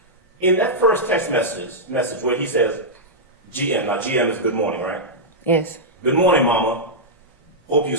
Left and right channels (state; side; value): normal; both; correlation -0.08